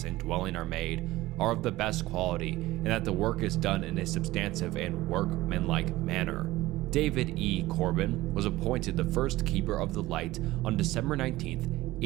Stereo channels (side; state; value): left; quieter; 17.7 dB